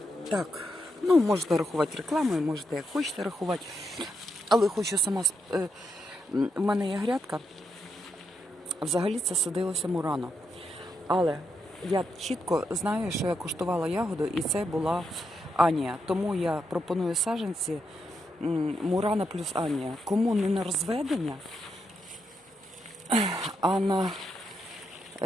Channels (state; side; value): normal; both; correlation 0.82